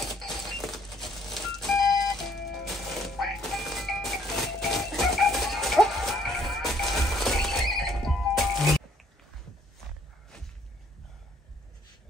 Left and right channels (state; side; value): normal; both; correlation 0.64